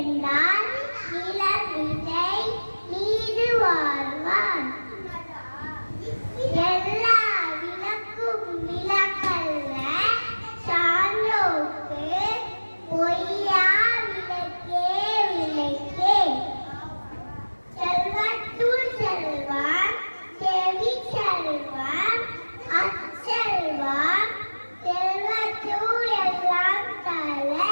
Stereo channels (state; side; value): inverted; both; correlation -1.00